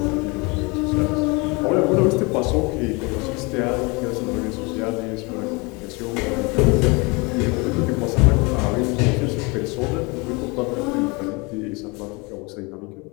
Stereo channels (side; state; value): right; quieter; 27.8 dB